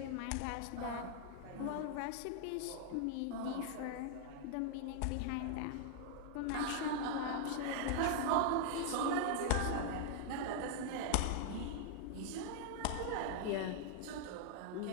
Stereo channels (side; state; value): both; different; correlation -0.01